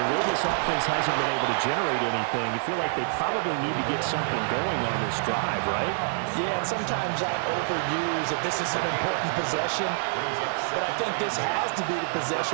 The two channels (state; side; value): silent; left; digital silence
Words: way this offense hasn't been able to generate anything, you feel like they probably need to get something going on this drive, right? Yeah, and sometimes I overuse that this is an important possession, but I think this has to be the